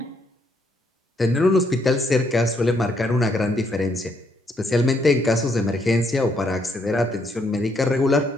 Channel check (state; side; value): normal; both; correlation 0.73